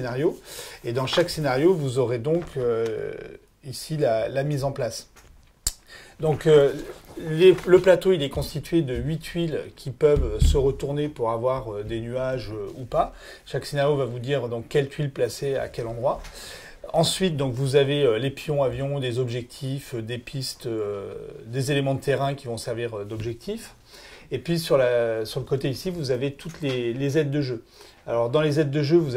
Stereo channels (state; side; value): identical; both; correlation 1.00